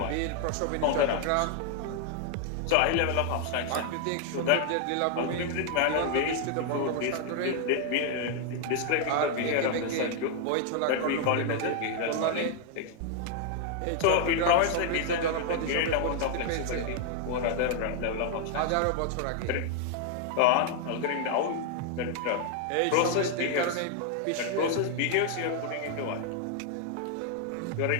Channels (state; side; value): different; both; correlation 0.00